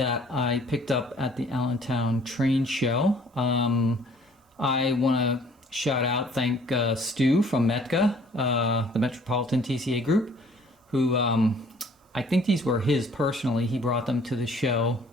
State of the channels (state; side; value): normal; both; correlation 0.56